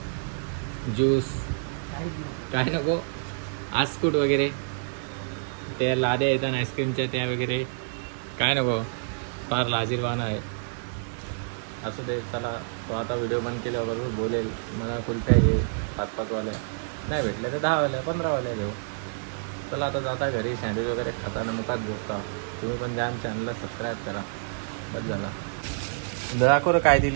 ज्यूस काय नको? आस्कुट वगैरे, त्या लाद्या येतात आईस्क्रीमच्या त्या वगैरे काय नको? फार लाजीरवाना आहे. असू दे. चला तो आता व्हिडिओ बंद केल्याबरोबर बोलेल मला कुल्फ्या घे 5-5 वाल्या, नाही भेटल्या तर 10 वाल्या 15 वाल्या घेऊ. चला आता जाता घरी, सँडविच वगैरे खाताना मुखात झोपता. तुम्ही पण द्या चॅनलला सबस्क्राईब करा. बस झाला. दाखव काय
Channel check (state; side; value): silent; left; digital silence